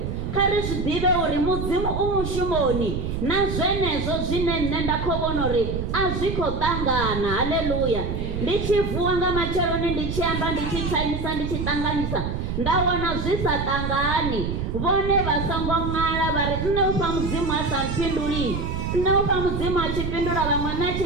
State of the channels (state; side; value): noise; right; rumble, 3 dB below the sound